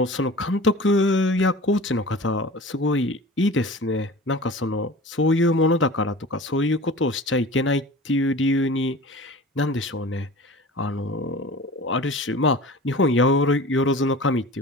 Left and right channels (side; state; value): both; normal; correlation 0.38